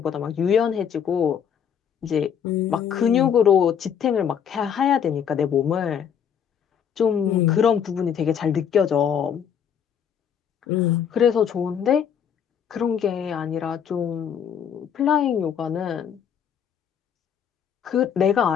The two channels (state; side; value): quieter; right; 8.1 dB